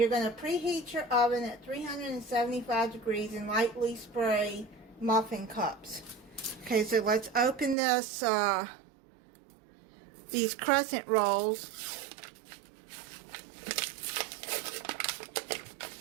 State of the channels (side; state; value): left; drops out; at 7.8 s